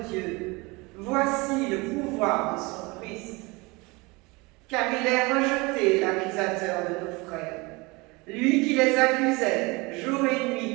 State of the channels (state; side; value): quieter; left; 25.2 dB